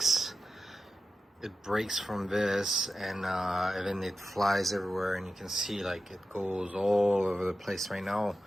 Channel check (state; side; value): normal; both; correlation 0.92